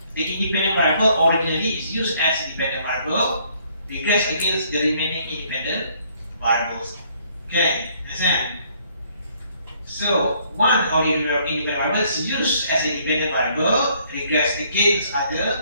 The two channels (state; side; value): inverted; both; correlation -0.65